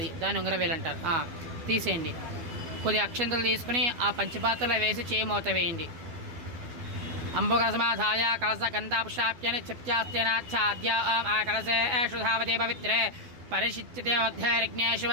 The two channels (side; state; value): left; late; 12 ms